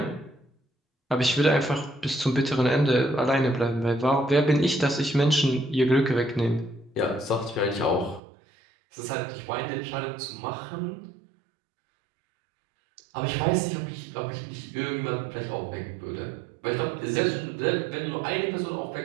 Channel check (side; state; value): left; drops out; at 8.2 s